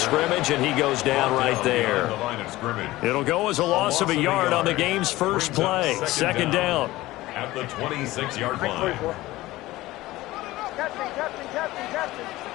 and he goes down right there. The line of scrimmage. It'll go as a loss of a yard on the game's first play. 2nd down. at the 26-yard line. Captain.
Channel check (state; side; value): quieter; right; 17.8 dB